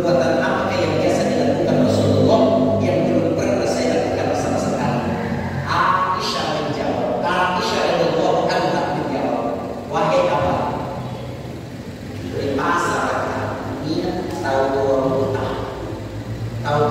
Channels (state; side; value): identical; both; correlation 1.00